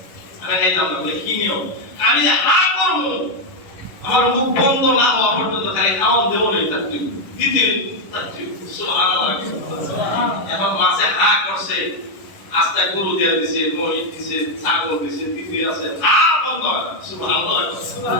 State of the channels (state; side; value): late; right; 11 ms